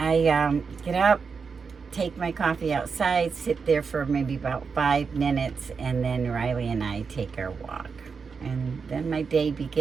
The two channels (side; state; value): left; quieter; 5.4 dB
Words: get up, take my coffee outside, sit there for maybe about 5 minutes, and then Riley and I take our walk. And then my day